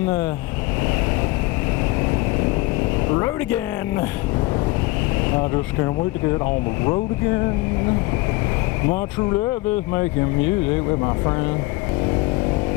the road again. I just can't wait to get on the road again. My true love is making music with my friend.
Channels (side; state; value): right; quieter; 21.7 dB